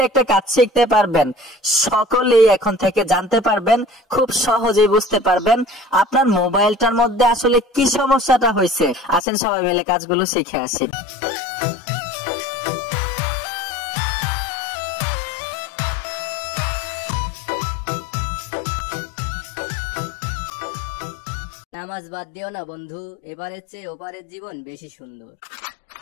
একটা কাজ শিখতে পারবেন। সকলেই এখন থেকে জানতে পারবেন, খুব সহজেই বুঝতে পারবেন আপনার মোবাইলটার মধ্যে আসলে কি সমস্যাটা হয়েছে। আসেন সবাই মিলে কাজগুলো শিখে আসি। নামাজ বাদ দিও না বন্ধু, এবারের চেয়ে ওপারের জীবন বেশি সুন্দর।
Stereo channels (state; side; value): drops out; right; at 9.2 s